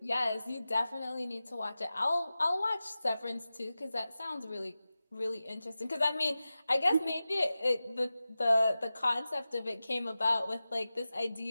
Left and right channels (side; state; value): both; inverted; correlation -0.95